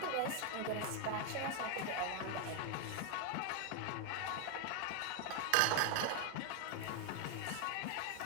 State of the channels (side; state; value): both; different; correlation 0.01